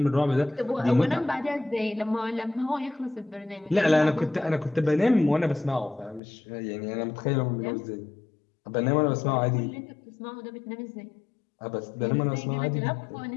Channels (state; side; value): drops out; right; at 6.2 s